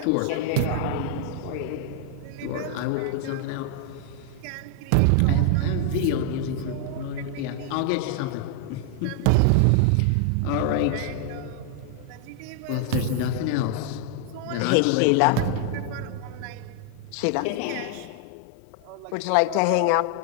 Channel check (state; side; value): different; both; correlation 0.00